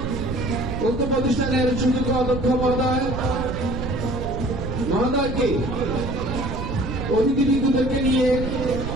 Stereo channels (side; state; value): right; noise; rumble, 5 dB below the sound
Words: উক্ত প্রতিষ্ঠানের সুযোগ্য অধ্যক্ষ মহোদয়কে অতিথিবৃন্দদেরকে নিয়ে